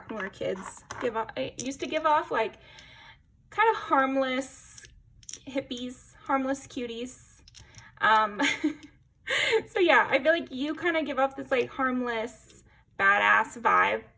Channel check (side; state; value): both; identical; correlation 1.00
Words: when we were kids used to give off, like kind of harmless hippies, harmless cuties. So yeah, I feel like you kind of give off this like harmless, badass vibe.